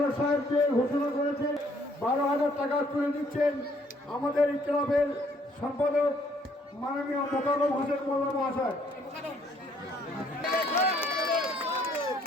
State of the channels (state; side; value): normal; both; correlation 0.64